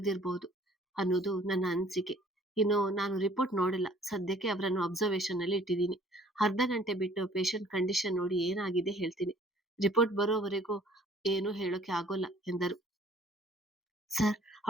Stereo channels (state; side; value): normal; both; correlation 0.56